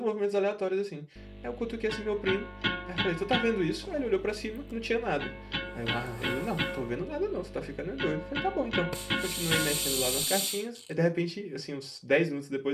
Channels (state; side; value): identical; both; correlation 1.00